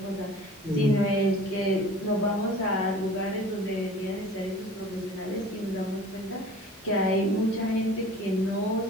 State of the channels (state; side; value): normal; both; correlation 0.44